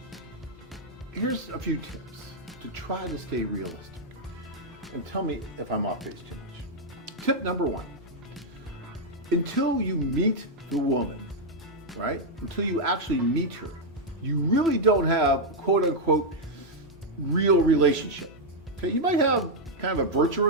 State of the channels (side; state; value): both; normal; correlation -0.02